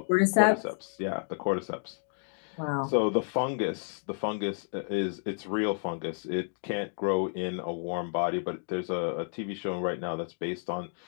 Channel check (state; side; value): silent; right; digital silence